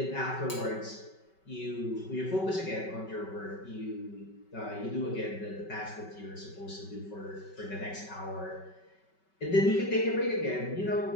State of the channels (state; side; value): late; right; 5.3 ms